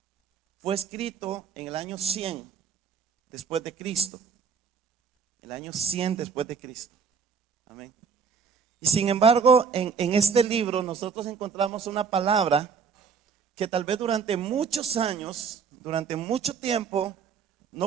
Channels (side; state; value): left; quieter; 6.0 dB